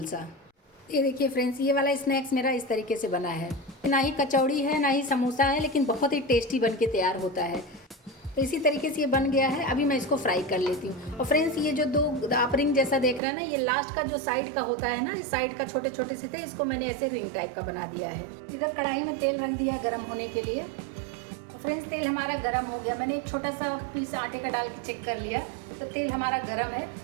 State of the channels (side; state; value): left; drops out; at 13.2 s